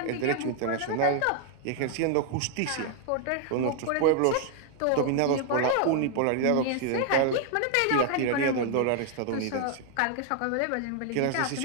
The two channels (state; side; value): different; both; correlation 0.00